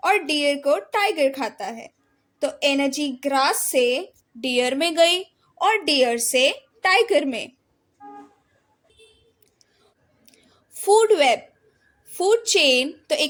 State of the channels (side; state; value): both; identical; correlation 1.00